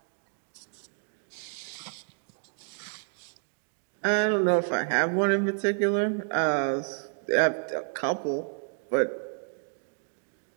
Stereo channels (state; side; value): silent; left; 58 dB below the other